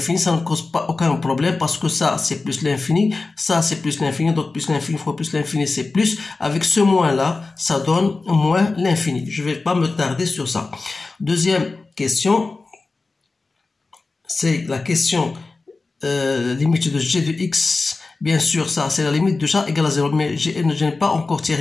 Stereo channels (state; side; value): quieter; right; 3.7 dB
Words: ça ne cause pas aucun problème parce que ça, c'est plus l'infini, ça, c'est plus l'infini, donc plus l'infini fois plus l'infini, c'est plus. Avec ce moins-là, ça donne moins l'infini. Je ne vais pas me tarder sur ça. Deuxième question, c'est la question limite de g de x. Bien sûr, ça, c'est la limite de chat égale à 0, mais je n'ai pas encore